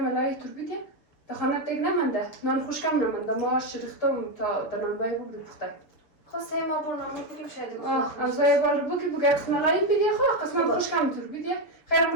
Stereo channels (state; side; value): late; right; 6.9 ms